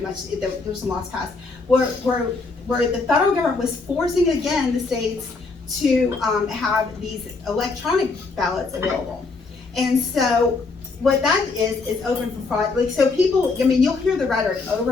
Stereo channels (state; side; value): quieter; right; 4.0 dB